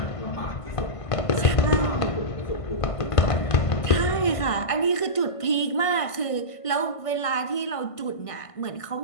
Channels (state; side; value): late; right; 1.5 ms